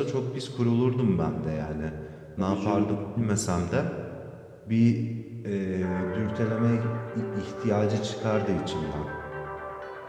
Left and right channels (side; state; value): both; identical; correlation 1.00